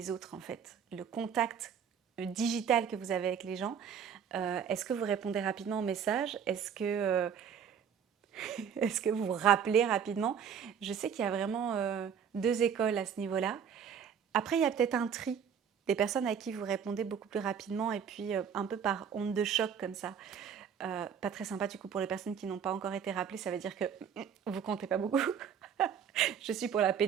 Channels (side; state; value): left; quieter; 7.8 dB